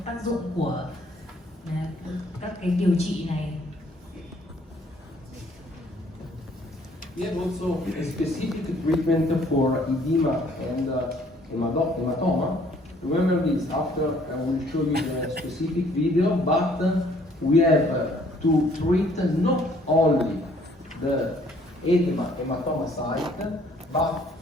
tác dụng của các cái điều trị này. We have also a specific treatment for edema and hematoma. Remember this, after I will show you the specific video, but we have to treat not only the hematoma site, but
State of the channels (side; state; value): both; normal; correlation 0.61